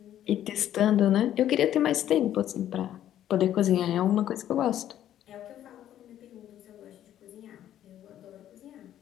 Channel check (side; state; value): right; quieter; 11.5 dB